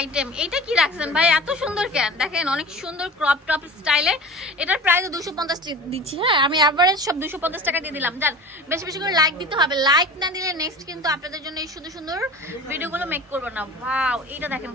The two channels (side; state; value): both; normal; correlation 0.37